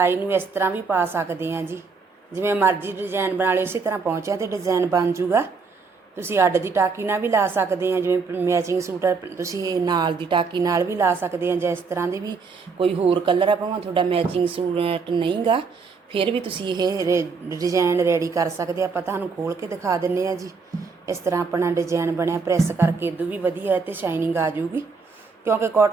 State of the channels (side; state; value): left; quieter; 4.8 dB